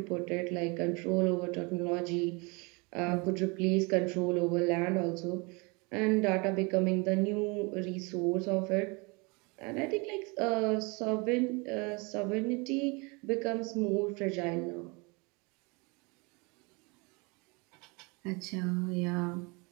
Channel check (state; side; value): quieter; left; 29.0 dB